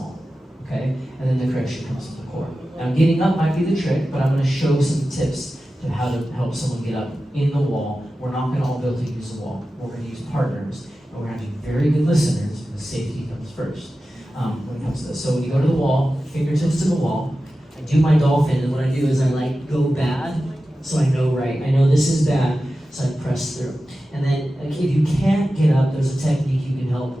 Okay? And then the correction comes from the core. Now getting up might be the trick, but I'm going to show some tips to how to help someone get up in the wall. We're not going to all be able to use the wall. We're going to use partners. And we're going to be very good listeners because safety comes first when it comes to this. So when you go to the wall, fingertips to the wall, I do my dolphin, and what I do is I like go bad, so I know right. I know this is bad, so I press through. And then if you can't get up, there's a technique you can help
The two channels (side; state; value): both; normal; correlation 0.94